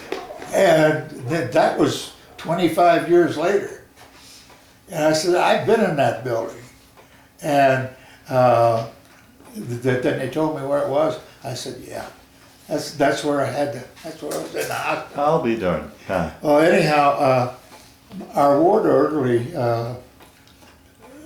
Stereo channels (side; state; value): both; identical; correlation 1.00